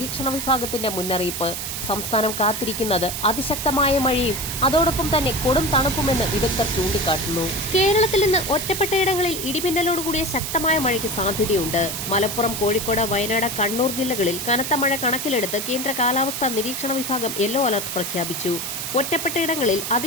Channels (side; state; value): right; noise; hiss, 5 dB below the sound